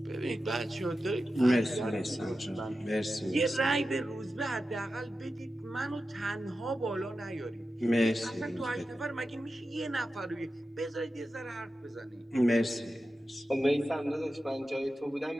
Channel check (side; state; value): both; normal; correlation 0.92